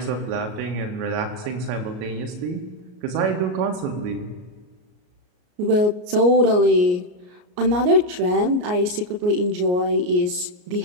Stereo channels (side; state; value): left; late; 33 ms